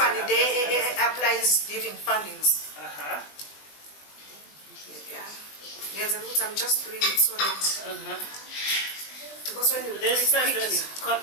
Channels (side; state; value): right; late; 20 ms